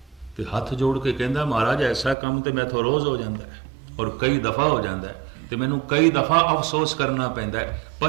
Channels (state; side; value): drops out; left; at 2.1 s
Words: ते हथ जोड़ के कहता महाराज ऐसा काम तो मैं तो रोज़ हो जाता है और कई दफ़ा हो जाता है, तो मैनू कई दफ़ा अफसोस करना पैंदा है,